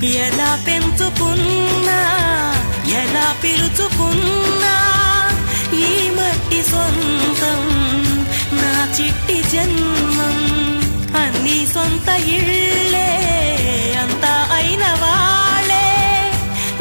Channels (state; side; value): inverted; both; correlation -1.00